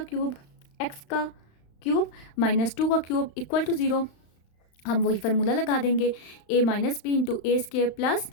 क्यूब, x का क्यूब -2 का क्यूब इक्वल टू 0। हम वही फार्मूला लगा देंगे, a - b into a square plus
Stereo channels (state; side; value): late; right; 35 ms